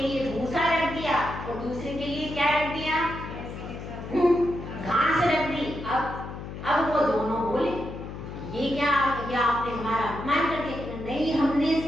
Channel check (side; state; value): left; noise; hum, 9 dB below the sound